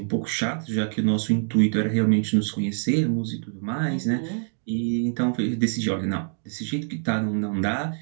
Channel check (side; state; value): left; silent; 58 dB below the other